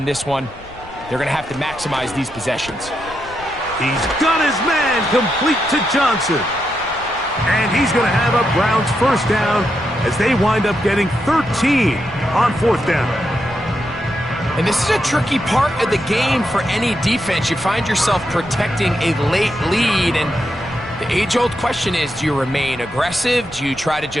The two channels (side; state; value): left; noise; rumble, 19 dB below the sound